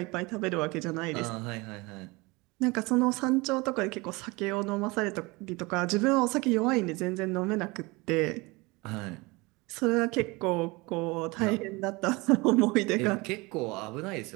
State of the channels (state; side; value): quieter; left; 24.6 dB